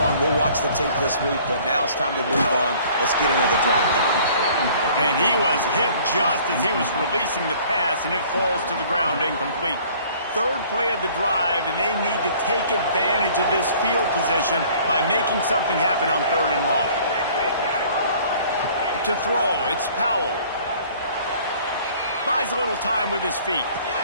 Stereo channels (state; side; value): inverted; both; correlation -0.53